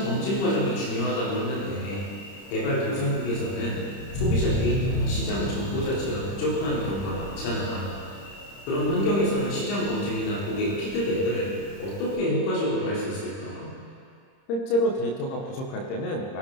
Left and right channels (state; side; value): late; right; 30 ms